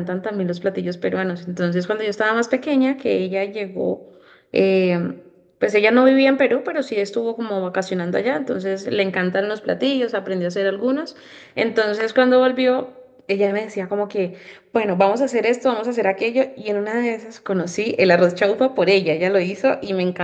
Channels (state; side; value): identical; both; correlation 1.00